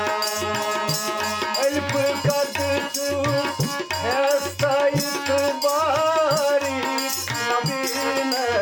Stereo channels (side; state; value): both; identical; correlation 1.00